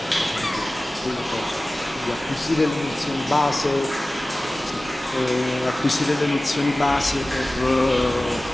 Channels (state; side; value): normal; both; correlation 0.97